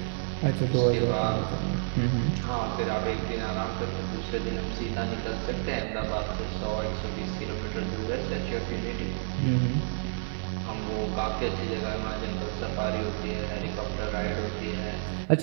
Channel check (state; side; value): silent; left; digital silence